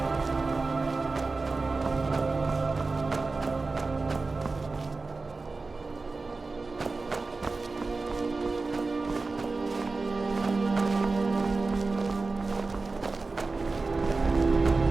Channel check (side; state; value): left; quieter; 3.8 dB